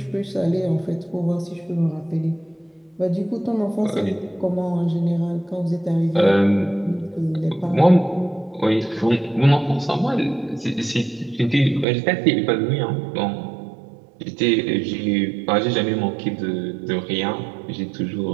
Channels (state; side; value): drops out; left; at 11.9 s